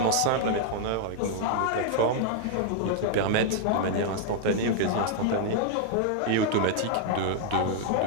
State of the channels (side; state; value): both; different; correlation 0.00